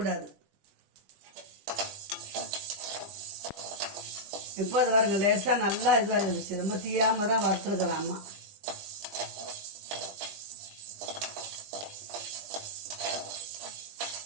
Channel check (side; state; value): left; late; 20 ms